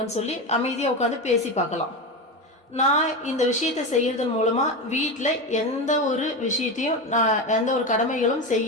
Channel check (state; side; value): normal; both; correlation 0.19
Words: சொல்லி அமைதியாக உட்காந்து பேசி பார்க்கலாம். நான் இந்த விஷயத்த செய்யறதன் மூலமாக வீட்டில் எந்த ஒரு விஷயத்தையும் நான் எந்த ஒரு கடமைகளும்